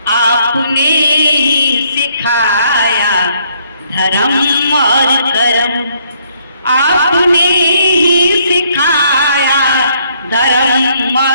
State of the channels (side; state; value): both; inverted; correlation -0.69